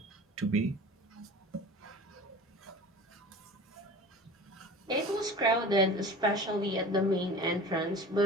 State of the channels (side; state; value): both; normal; correlation 0.39